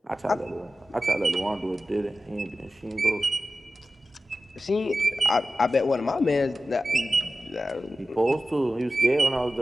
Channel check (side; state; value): both; normal; correlation 0.93